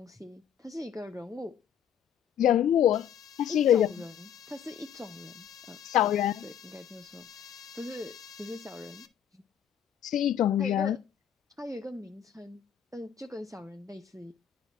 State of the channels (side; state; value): right; quieter; 9.4 dB